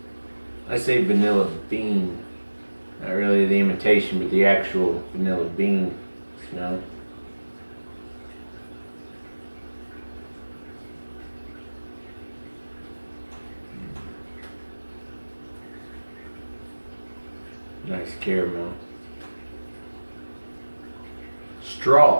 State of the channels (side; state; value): both; inverted; correlation -1.00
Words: I say vanilla bean, not really the imitation, but the actual vanilla bean smell. Nice caramel.